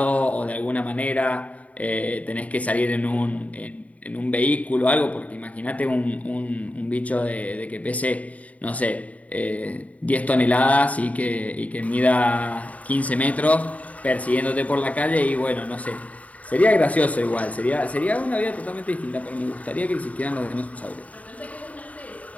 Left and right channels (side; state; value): right; late; 0.069 ms